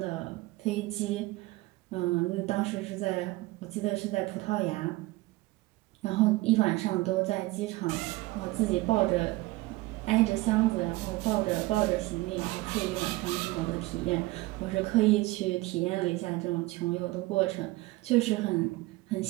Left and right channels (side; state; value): left; quieter; 20.4 dB